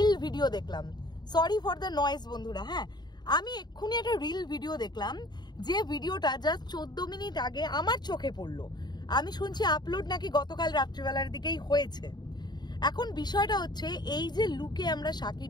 ভিডিও দেখলাম। সরি ফর দ্য নয়েজ বন্ধুরা। হ্যাঁ, আমি এক্ষুনি একটা রিল ভিডিও দেখলাম, যে ভিডিওটা জাস্ট 14 মিনিট আগে আমার চোখে পড়লো। আমি শুনছি আপলোড নাকি গতকাল রাত্রিবেলার দিকেই হয়েছে। এখন বিষয়টা হচ্ছে, এই যে লুকে আমরা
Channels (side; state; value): right; late; 0.20 ms